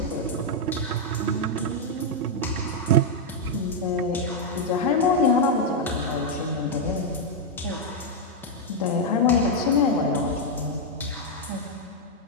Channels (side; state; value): both; normal; correlation -0.01